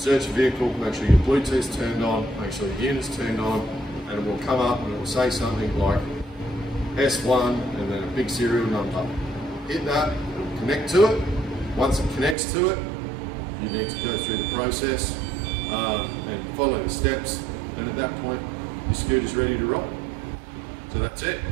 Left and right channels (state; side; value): drops out; left; at 12.4 s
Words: your vehicle, make sure your Bluetooth's turned on, make sure the unit's turned on, and it will come up and it will say something like S1 and then a big serial number. Hit that, it will connect to it. Once it connects to it, you need to go through the process and follow the steps, and at that point, your scooter's ready to ride. So that's it.